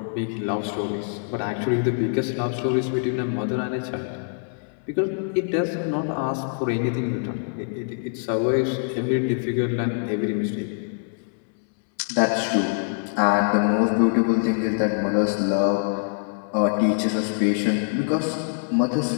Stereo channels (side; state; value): right; silent; digital silence